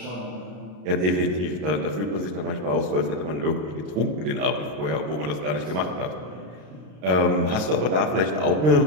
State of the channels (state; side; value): late; left; 33 ms